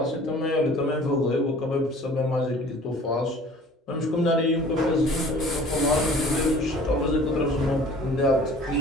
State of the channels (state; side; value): normal; both; correlation 0.48